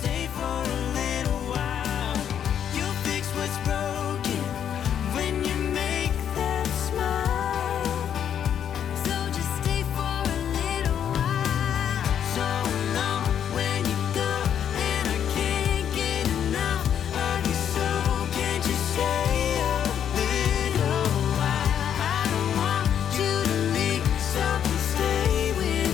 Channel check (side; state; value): right; quieter; 9.0 dB